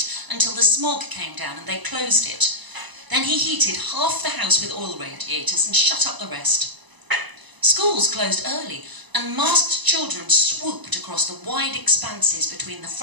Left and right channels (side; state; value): left; late; 1.0 ms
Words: until the smog came down and they closed it. Then he heated half the house with oil radiators and shut up the rest. Schools closed early and masked children swooped across the wide expanses between the